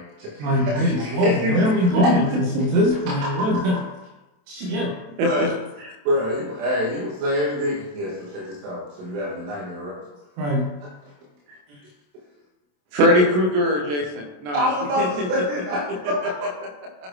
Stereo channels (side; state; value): left; late; 27 ms